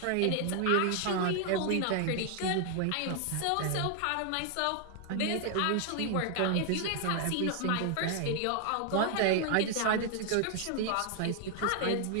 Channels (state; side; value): different; both; correlation 0.00